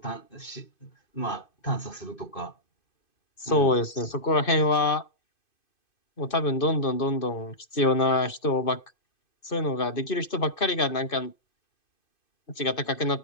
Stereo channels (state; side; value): late; right; 2.5 ms